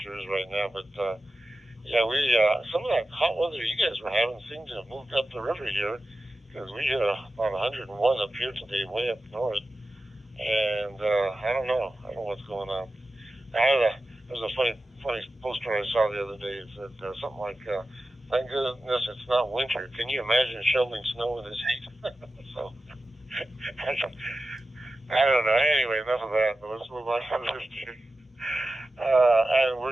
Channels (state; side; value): normal; both; correlation 0.93